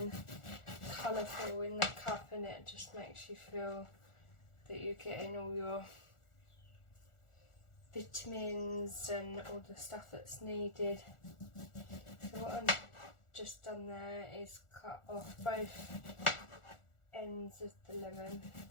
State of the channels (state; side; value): late; right; 1.4 ms